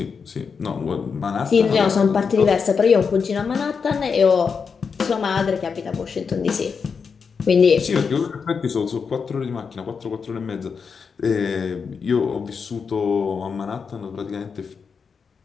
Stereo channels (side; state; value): right; quieter; 5.7 dB